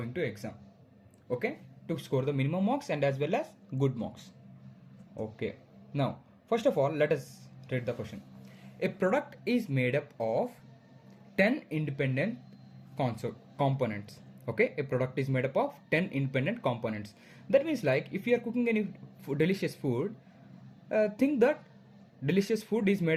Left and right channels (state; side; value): identical; both; correlation 1.00